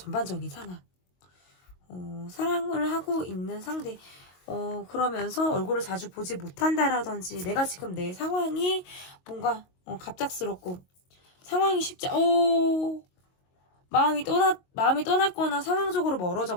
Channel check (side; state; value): right; late; 22 ms